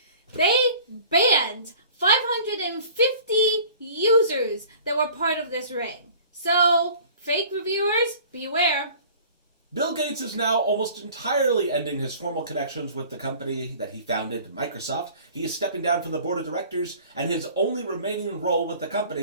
They banned 550 users that were part of this ring. So, fake reviewers, beware. Bill Gates is now almost entirely ending his formal connections with the company that he founded, Microsoft. He is stepping down from the board of directors, and his only remaining role with the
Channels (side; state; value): both; inverted; correlation -0.47